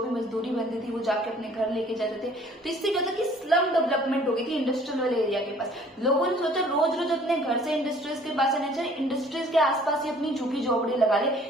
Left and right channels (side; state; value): both; normal; correlation 0.54